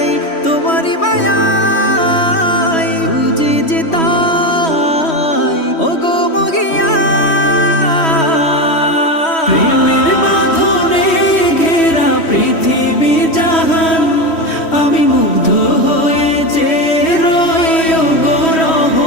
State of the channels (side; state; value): right; late; 3.1 ms